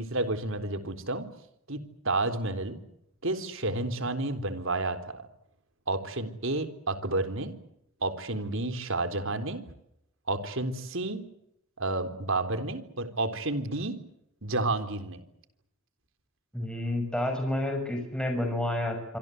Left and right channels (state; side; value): normal; both; correlation 0.04